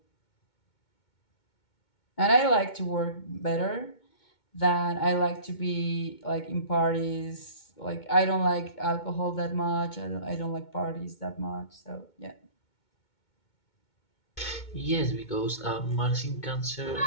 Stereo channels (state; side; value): late; right; 2.2 ms